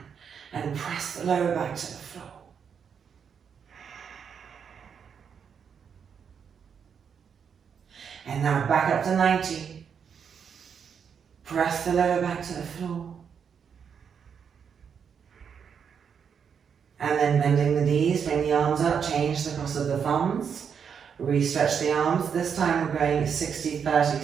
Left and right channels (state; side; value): quieter; left; 7.1 dB